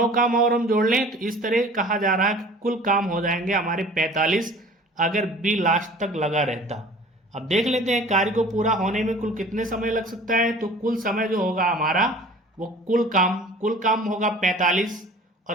काम और हम जोड़ लें, तो इस तरह कहा जा रहा है कि कुल काम हो जाएंगे हमारे 45 अगर बी लास्ट तक लगा रहता। अब देख लेते हैं कार्य को पूरा होने में कुल कितने समय लग सकता है। तो कुल समय जो होगा हमारा वो कुल काम होगा 45,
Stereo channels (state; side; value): normal; both; correlation 0.46